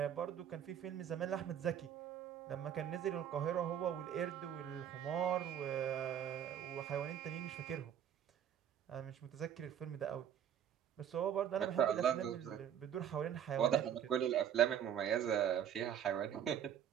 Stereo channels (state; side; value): quieter; left; 9.4 dB